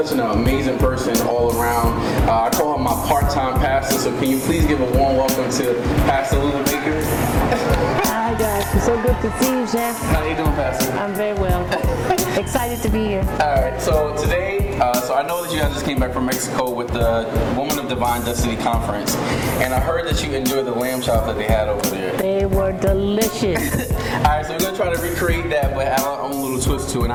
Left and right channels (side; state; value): both; identical; correlation 1.00